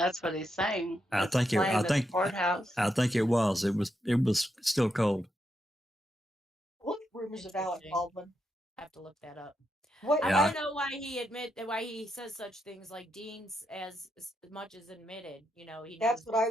what he's saying. I It's planned at the courthouse. I think it was. It was still cold. What rumors of Alec Interesting. Baldwin? I have to look that up. What? I Yeah. want to know why he says such things like Dean's as much as admitted. You know, he knows That's what I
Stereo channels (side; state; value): both; normal; correlation 0.83